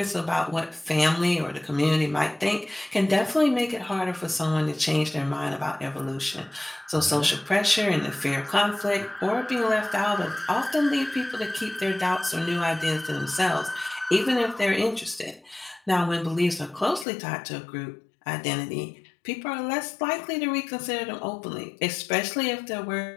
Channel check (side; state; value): right; drops out; at 17.1 s